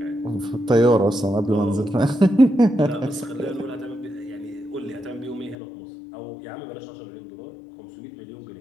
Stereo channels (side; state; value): right; drops out; at 5.6 s